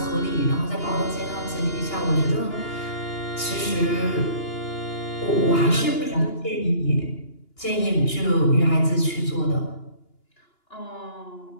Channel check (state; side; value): late; right; 2.9 ms